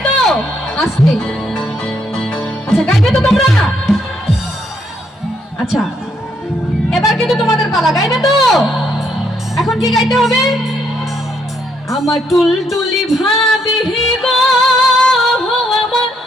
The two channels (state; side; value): normal; both; correlation 0.74